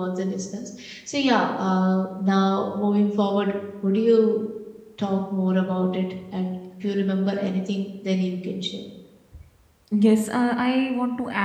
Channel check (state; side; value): identical; both; correlation 1.00